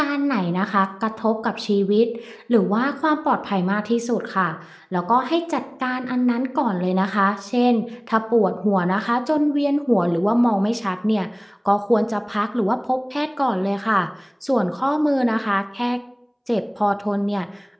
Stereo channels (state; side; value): identical; both; correlation 1.00